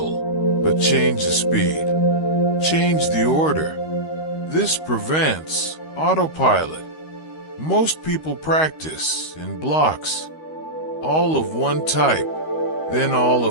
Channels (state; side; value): late; right; 13 ms